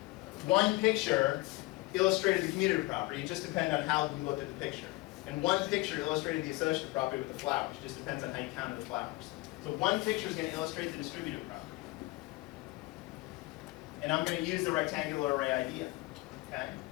one picture illustrated the commutative property, it just depends on how you looked at the picture. And one picture illustrated the associative property with the flowers. It just depends on how you counted the flowers. So one picture is going to illustrate the distributive property. And I'm going to use the rectangular array idea. Okay?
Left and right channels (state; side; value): quieter; right; 21.1 dB